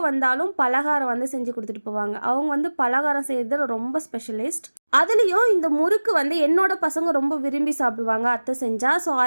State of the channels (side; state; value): both; inverted; correlation -1.00